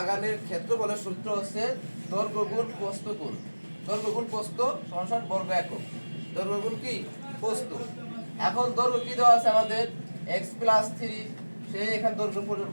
ক্ষেত্রফলের সূত্র হচ্ছে দৈর্ঘ্য গুণ প্রস্থ গুণ, দৈর্ঘ্য গুণ প্রস্থ সমান বর্গ একক, দৈর্ঘ্য গুণ কি প্রস্থ। এখন দৈর্ঘ্য কি দেওয়া আছে আমাদের? x প্লাস 3, সেই এখানে দৈর্ঘ্য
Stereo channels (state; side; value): inverted; both; correlation -1.00